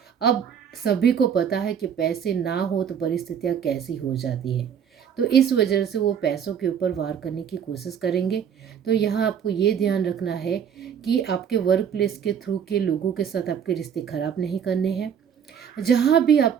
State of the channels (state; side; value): quieter; left; 8.1 dB